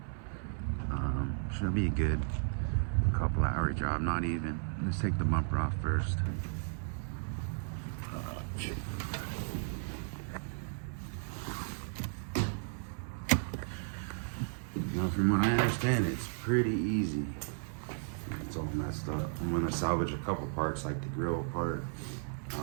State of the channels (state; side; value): silent; left; 55 dB below the other